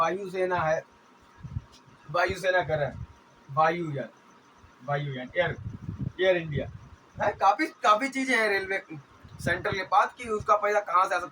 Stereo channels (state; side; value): identical; both; correlation 1.00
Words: है, वायुसेना कर है, वायुयान, वायुयान, एयर इंडिया है, काफी चीजें हैं रेलवे सेंटर के पास कि उसका पैसा कहाँ से आ